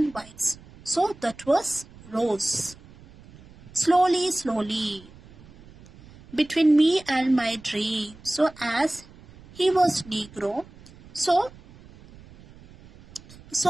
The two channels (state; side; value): noise; right; rumble, 22 dB below the sound